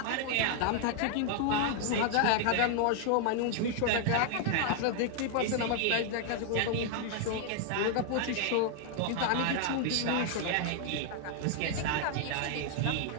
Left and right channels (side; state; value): both; different; correlation 0.00